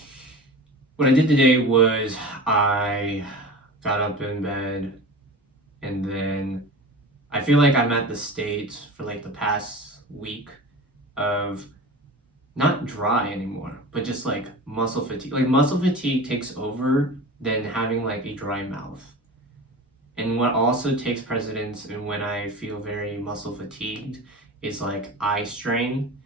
what I did today was I got up in bed, and then I feel like I'm at the state for like the past week of not dry anymore, but just like muscle fatigue. Like muscle fatigue takes over than having like a dry mouth. And what also takes precedence, and when I feel very muscle fatigued, is like eye strain.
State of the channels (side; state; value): both; normal; correlation 0.33